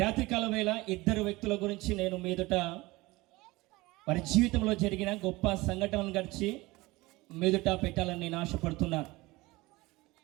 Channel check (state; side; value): quieter; left; 21.2 dB